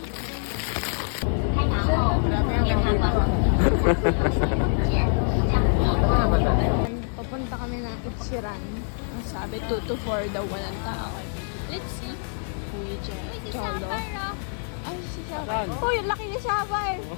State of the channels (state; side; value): silent; right; 61 dB below the other